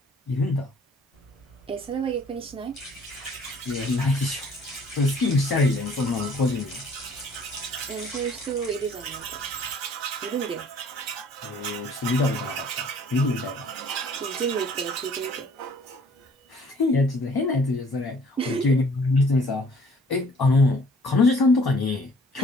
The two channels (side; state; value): both; normal; correlation 0.56